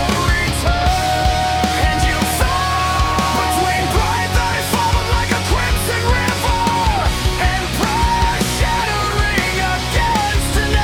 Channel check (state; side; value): identical; both; correlation 1.00